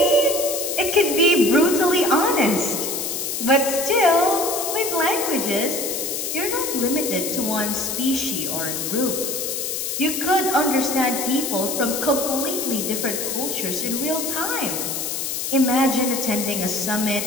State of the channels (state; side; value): noise; left; hiss, 3 dB below the sound